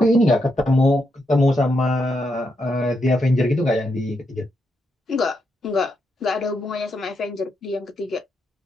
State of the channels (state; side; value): normal; both; correlation 0.81